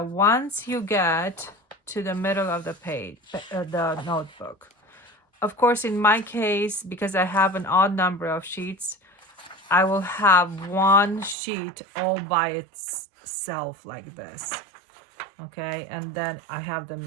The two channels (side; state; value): left; drops out; at 11.4 s